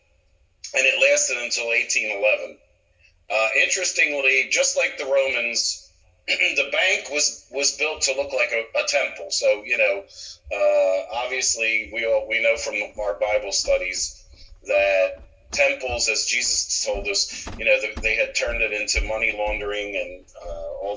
and it lasted until 1811. Interestingly, just like the Romans, the bank was built to look like a temple. So, obviously we know from our Bible studies that temples, as Jesus told us, they had turned it into money laundering and all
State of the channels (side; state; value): both; identical; correlation 1.00